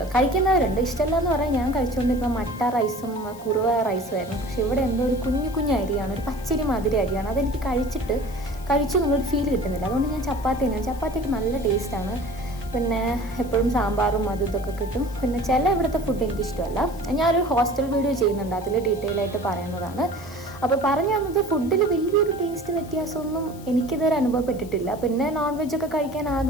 കഴിക്കുന്നവരുണ്ട്, ഇഷ്ടമല്ല എന്ന് പറയാൻ. ഞാൻ കഴിച്ചുകൊണ്ടിരുന്ന മട്ട റൈസും കുറുവ റൈസും ആയിരുന്നു. പക്ഷെ ഇവിടെ എന്തോ ഒരു കുഞ്ഞു അരിയാണ്, ഒരു പച്ചരി മാതിരി അരിയാണ്. അതെനിക്ക് കഴിച്ചു എന്നുള്ളൊരു ഫീൽ കിട്ടുന്നില്ല. അതുകൊണ്ട് ഞാൻ ചപ്പാത്തി തന്നെയാണ്. ചപ്പാത്തിയൊക്കെ നല്ല ടേസ്റ്റാണ്. പിന്നെ എപ്പോഴും സാമ്പാറും അതും ഇതൊക്കെ കിട്ടും. പിന്നെ ചില ഇവിടുത്തെ ഫുഡ് എനിക്കിഷ്ടമല്ല. ഞാനൊരു ഹോസ്റ്റൽ വീഡിയോ ചെയ്യുന്നുണ്ട്, അതിൽ ഡീറ്റെയിൽ ആയിട്ട് പറയുന്നതാണ്. അപ്പോൾ പറഞ്ഞു തന്നത്, ഫുഡിൽ വലിയൊരു ടേസ്റ്റ് വ്യത്യാസമൊന്നും എനിക്കിതുവരെ അനുഭവപ്പെട്ടിട്ടില്ല. പിന്നെ നോൺ വെജൊക്കെ കഴിക്കാൻ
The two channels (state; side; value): noise; left; hiss, 21 dB below the sound